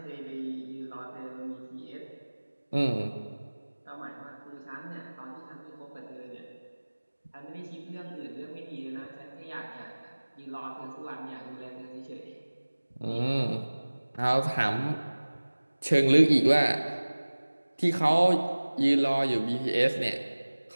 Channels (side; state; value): both; inverted; correlation -1.00